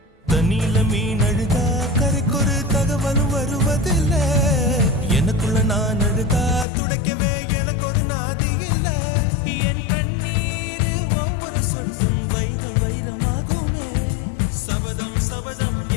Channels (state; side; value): drops out; right; at 6.7 s